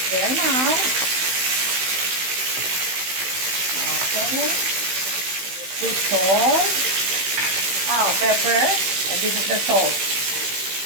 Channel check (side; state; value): left; late; 16 ms